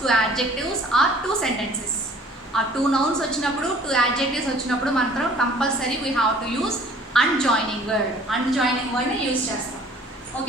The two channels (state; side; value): normal; both; correlation 0.53